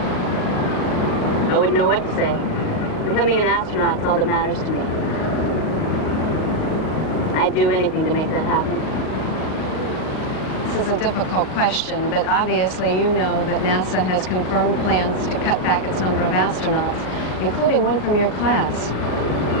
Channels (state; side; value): late; right; 38 ms